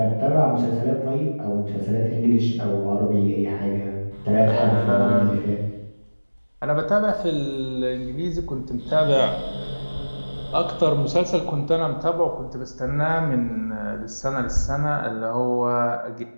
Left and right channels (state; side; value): inverted; both; correlation -1.00